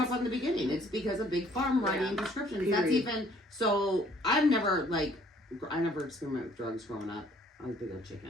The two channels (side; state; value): both; normal; correlation 0.60